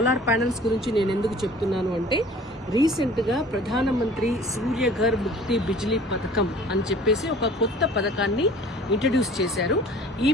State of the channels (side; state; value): both; normal; correlation 0.48